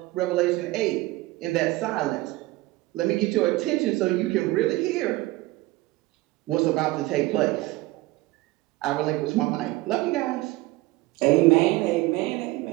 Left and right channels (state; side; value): quieter; left; 19.9 dB